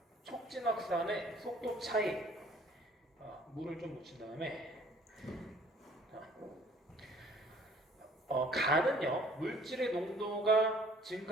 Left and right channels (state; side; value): normal; both; correlation 0.56